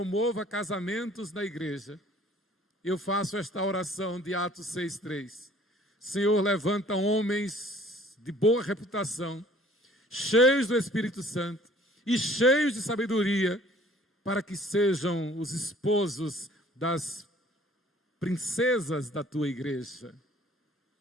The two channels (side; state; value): both; normal; correlation 0.54